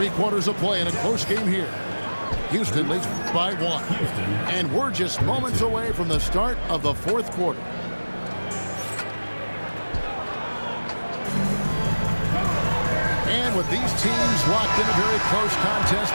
quarters of play in a close game here. Houston leads by 1. And we're just moments away from the start of the 4th quarter. And with these teams locked in a very close contest,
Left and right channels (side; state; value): both; inverted; correlation -1.00